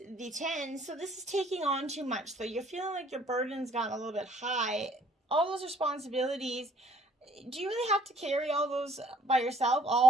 the 10, so this is taking on too much. So you're feeling like your burden's gotten a little bit high. All those responsibilities, do you really have to carry all those by yourself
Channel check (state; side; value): normal; both; correlation 0.60